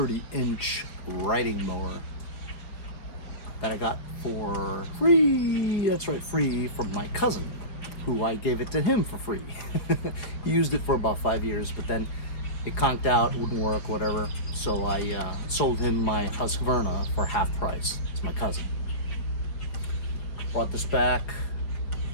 riding mower that I got for free. That's right, free from my cousin, who I gave it to him for free. He used it for about 5 years, but then it conked out, wouldn't work, whatever. So I sold him my Husqvarna for half price. It's my cousin. Brought this back,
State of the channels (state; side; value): late; right; 5.0 ms